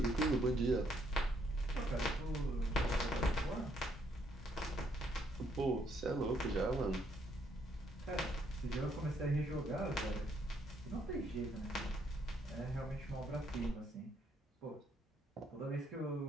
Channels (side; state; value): both; normal; correlation 0.71